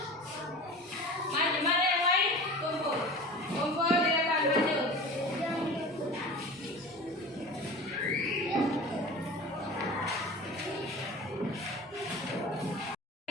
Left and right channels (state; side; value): normal; both; correlation 0.36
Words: maju, mana yang lain? Kumpul, kumpul di depan, maju.